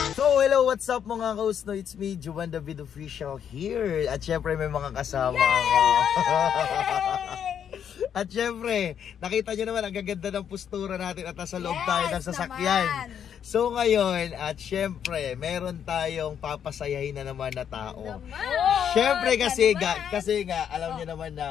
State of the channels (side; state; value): right; quieter; 8.6 dB